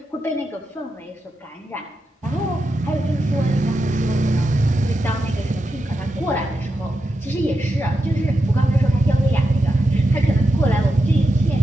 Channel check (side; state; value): both; normal; correlation 0.87